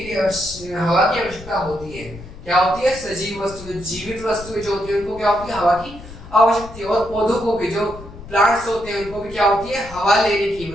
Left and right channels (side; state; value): left; noise; rumble, 15 dB below the sound